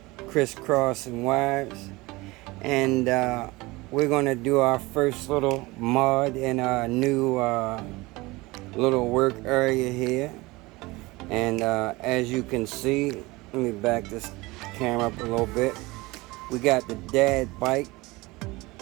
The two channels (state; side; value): quieter; left; 22.1 dB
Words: crisscrossing wires. And we're going to do our first little mod in our new little work area here. And as you can see, let me back this camera up a little bit. We got the dad bike,